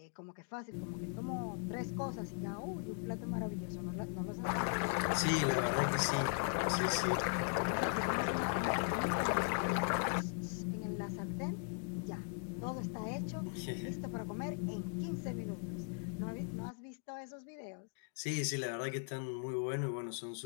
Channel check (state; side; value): quieter; right; 39.3 dB